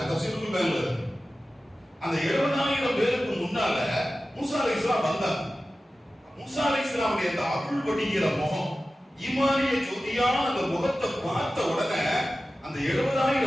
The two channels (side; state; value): both; normal; correlation 0.95